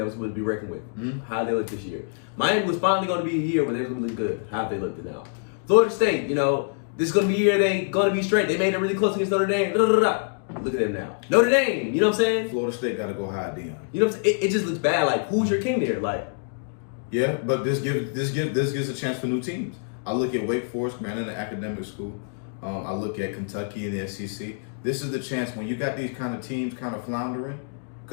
was supposed to be reckoned with. Mm-hmm. How they look this year. Miami was finally going to be a year where they were going to look good. How they looked now. Florida State, this is going to be a year they going to be straight. They made it really close against Notre Dame. Look at them now. Notre Dame, you know what I'm saying? Florida State got to go high, Dion. You know what I'm saying? It just looks bad. Who's your king there? Yeah, but this gives a chance for new teams. I look at Wake Forest, man, in the academic school. I look at Kentucky and the SEC. This is the chance when you got these kind of teams kind of floundering,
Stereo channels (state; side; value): silent; right; digital silence